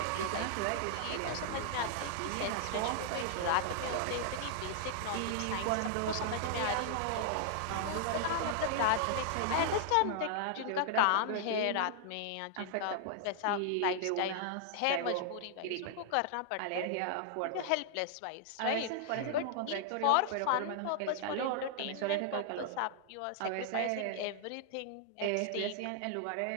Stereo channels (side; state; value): both; different; correlation -0.01